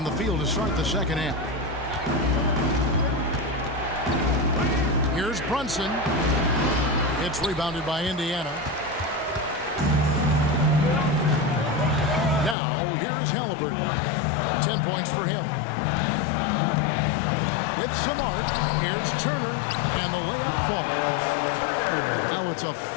the field to start the second half. Here's Brunson. It's rebounded by Indiana. Now, here's Halliburton. 10 points for him. With some arc, here's Turner, and the layup falls. Now it's a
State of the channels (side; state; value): right; drops out; at 12.6 s